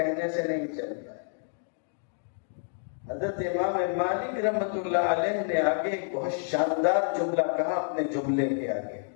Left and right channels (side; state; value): right; silent; digital silence